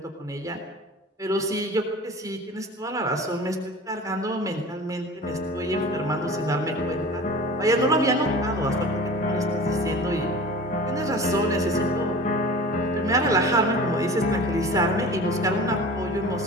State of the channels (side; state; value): both; normal; correlation 0.39